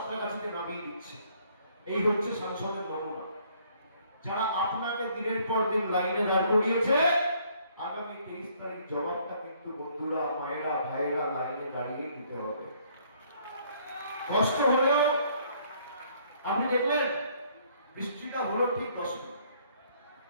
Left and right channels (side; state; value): both; inverted; correlation -0.64